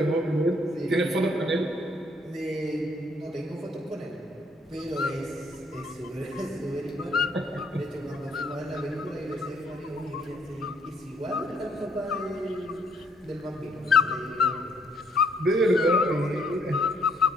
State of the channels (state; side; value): normal; both; correlation 0.67